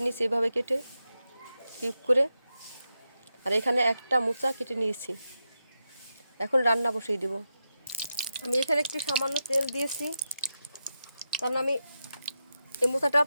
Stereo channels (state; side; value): inverted; both; correlation -0.89